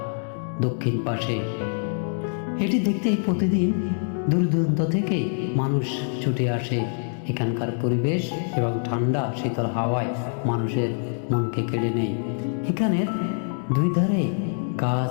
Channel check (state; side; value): silent; right; digital silence